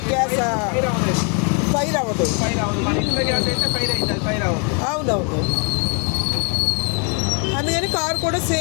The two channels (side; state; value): right; quieter; 37.7 dB